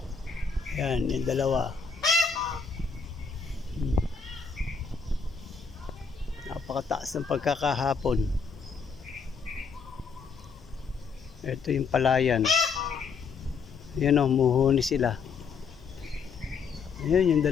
Ayan, yung dalawa. Napakataas ng pagkakahapon. Ito yung palayan. Ayan o, muhuni sila. Ayan, yung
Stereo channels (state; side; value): quieter; right; 5.4 dB